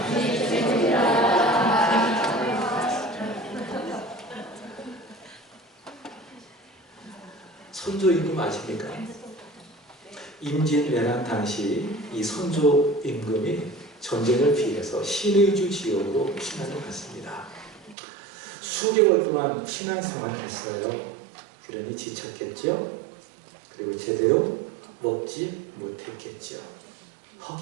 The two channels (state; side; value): drops out; left; at 17.9 s